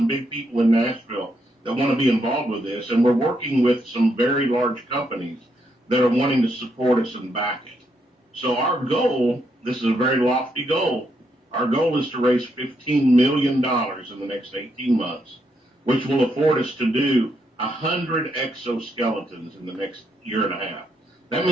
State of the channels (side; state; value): both; normal; correlation 0.78